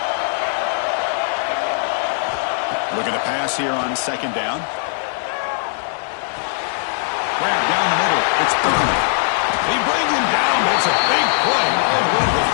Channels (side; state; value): right; silent; digital silence